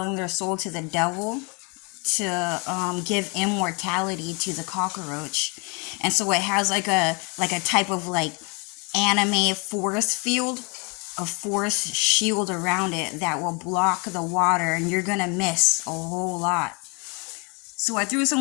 their soul to the devil to give immortality to the cockroach. And so it has like a type of like anime force field, a force shield around it that will block the water, and you're gonna miss a whole lot. So I threw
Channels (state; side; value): quieter; right; 31.8 dB